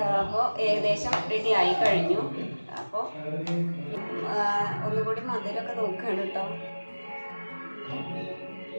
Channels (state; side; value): inverted; both; correlation -1.00